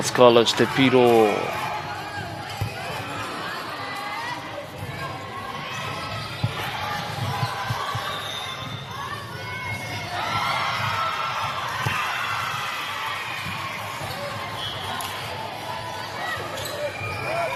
College te piro.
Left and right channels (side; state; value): both; identical; correlation 1.00